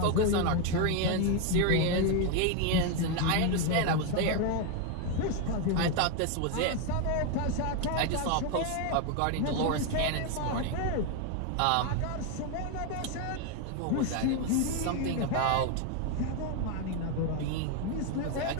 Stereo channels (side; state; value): both; different; correlation 0.01